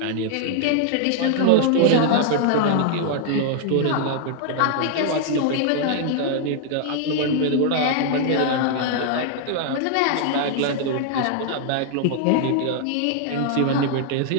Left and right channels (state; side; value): different; both; correlation 0.00